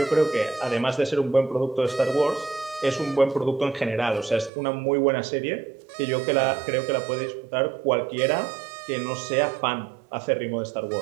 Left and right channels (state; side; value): drops out; left; at 4.5 s